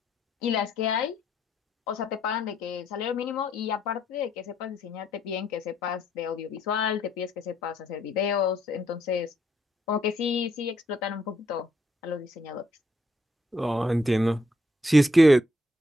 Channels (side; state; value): both; normal; correlation 0.72